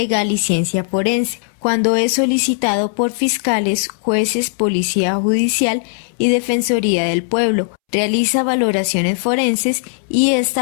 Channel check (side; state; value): right; silent; 68 dB below the other